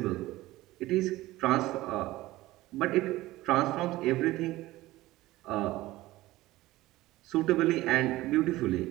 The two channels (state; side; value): quieter; left; 17.6 dB